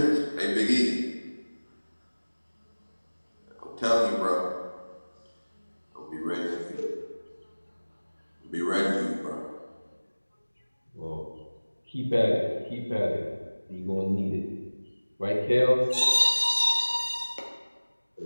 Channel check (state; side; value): inverted; both; correlation -1.00